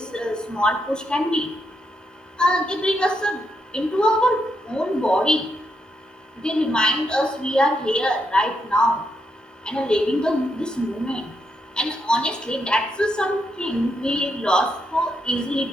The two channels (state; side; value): normal; both; correlation 0.80